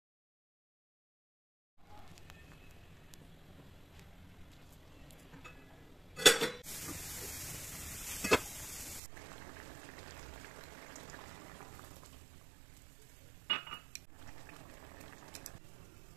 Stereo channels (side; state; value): left; drops out; at 9.0 s